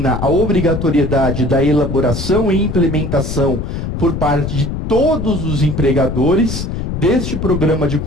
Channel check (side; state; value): left; noise; rumble, 4 dB below the sound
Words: a obrigatoriedade da elaboração e implementação por parte de todos os empregadores deste Programa de